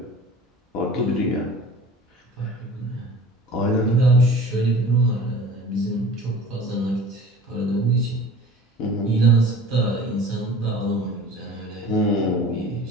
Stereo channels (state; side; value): normal; both; correlation 0.42